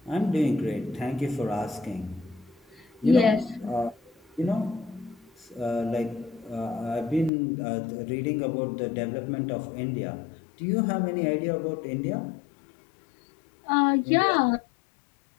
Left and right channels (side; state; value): right; drops out; at 7.3 s